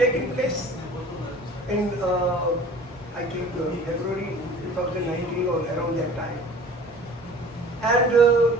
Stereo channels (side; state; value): both; normal; correlation 0.46